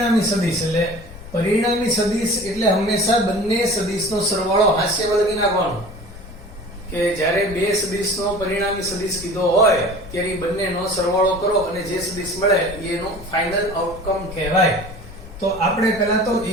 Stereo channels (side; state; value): left; noise; rumble, 16 dB below the sound